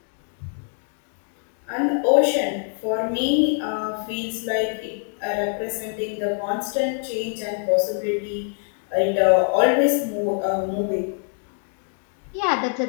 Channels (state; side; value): silent; right; 56 dB below the other